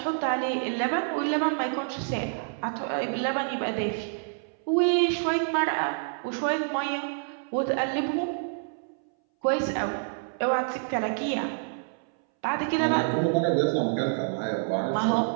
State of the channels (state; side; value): silent; left; 60 dB below the other